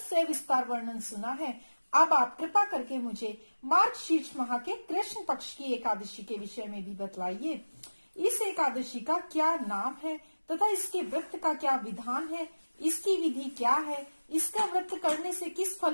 वर्णन सुना है। अब आप कृपा करके मुझे मार्गशीर्ष माह के कृष्ण पक्ष की एकादशी के विषय में भी बतलाइए। इस एकादशी का क्या नाम है तथा इसके व्रत का क्या विधान है, इसकी विधि क्या है, इसका व्रत करने से किस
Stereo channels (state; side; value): inverted; both; correlation -1.00